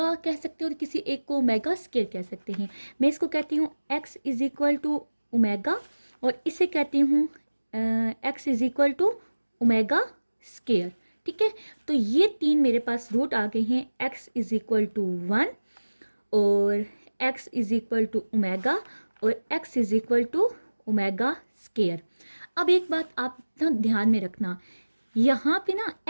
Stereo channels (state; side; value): inverted; both; correlation -1.00